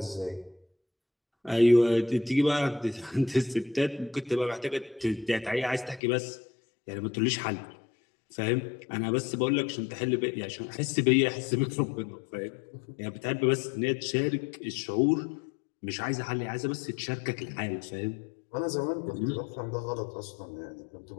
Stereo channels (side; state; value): right; drops out; at 6.0 s